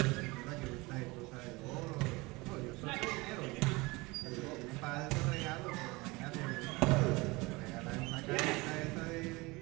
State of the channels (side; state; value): left; quieter; 23.6 dB